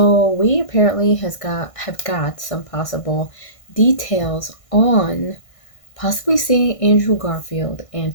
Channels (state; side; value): late; right; 1.6 ms